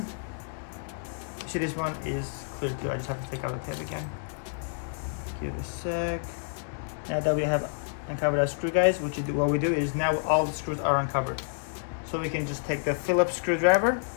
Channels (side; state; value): right; silent; digital silence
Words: See, this one is clear too. I just have to take out the tape again. Give it a sec. Now that we have uncovered our screw, guys, what we do is now all the screws are uncovered. So we can just take the Phillips screwdriver,